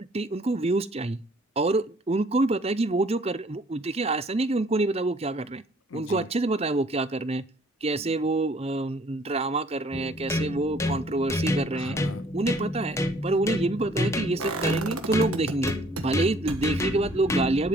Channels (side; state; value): both; normal; correlation 0.59